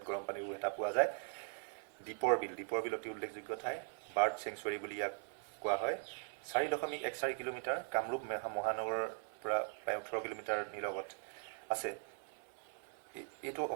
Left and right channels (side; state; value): left; silent; digital silence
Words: গৰম পানীৰ এটা পোৱা যায়। দীপৰ বিল অতি উল্লেখযোগ্য ঠাই, বাৰ্ড চেংচুৱাৰী বুলি ইয়াক কোৱা হয়। 4.14 কিলোমিটাৰ, কামৰূপ মহানগৰৰ পৰা প্ৰায় 18 কিলোমিটাৰ নিলগত আছে। এইটো